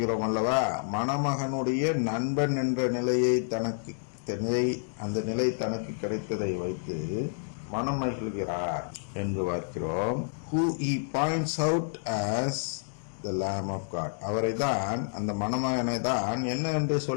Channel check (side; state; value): right; silent; digital silence